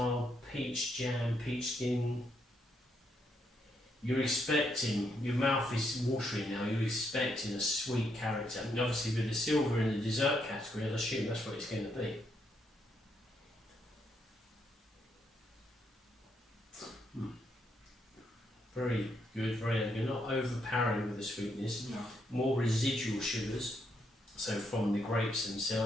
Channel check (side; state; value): both; normal; correlation 0.77